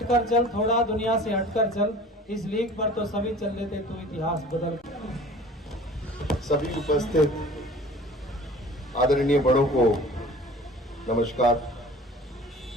चल, थोड़ा दुनिया से हटकर चल, इस लीग पर तो सभी चल लेते, तू इतिहास बदल। सभी उपस्थित आदरणीय बड़ों को नमस्कार,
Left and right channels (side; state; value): both; normal; correlation 0.45